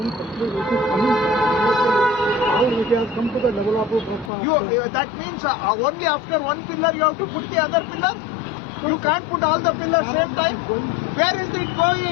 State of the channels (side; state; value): right; drops out; at 4.3 s